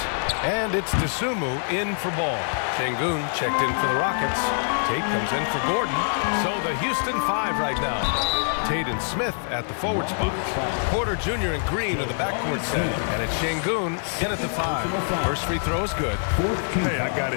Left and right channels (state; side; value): silent; right; digital silence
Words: And it's Dosunmu in for Ball. Şengün checked in for the Rockets. Tate comes in for Gordon. So the Houston 5 right now. Tate and Smith at the forward spots. Porter Jr. and Green are the backcourt set. And it's Şengün in at the 5. First free throw is good. Hey, I got